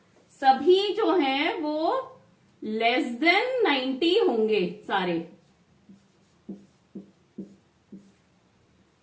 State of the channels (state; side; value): identical; both; correlation 1.00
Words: सभी जो हैं वो लेस देन 90 होंगे सारे।